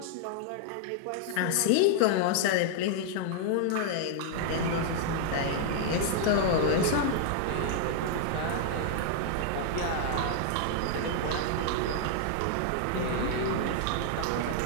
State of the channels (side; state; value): both; different; correlation 0.00